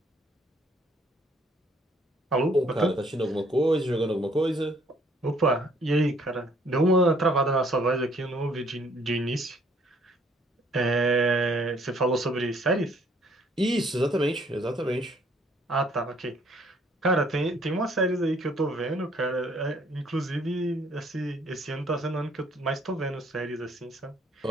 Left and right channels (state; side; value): normal; both; correlation 0.62